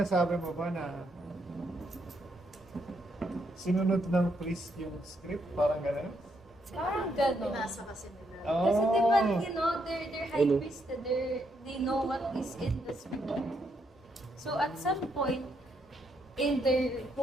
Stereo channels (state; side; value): normal; both; correlation 0.76